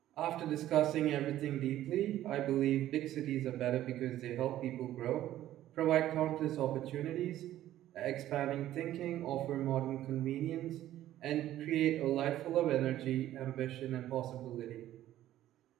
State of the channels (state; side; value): quieter; left; 13.3 dB